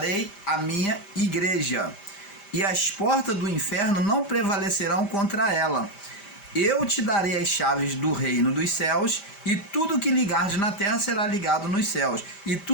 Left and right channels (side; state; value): right; late; 5.0 ms